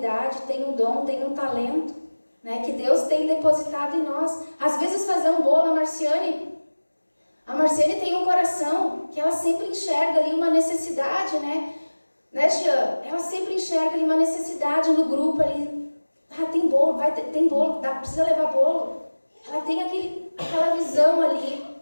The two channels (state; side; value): inverted; both; correlation -1.00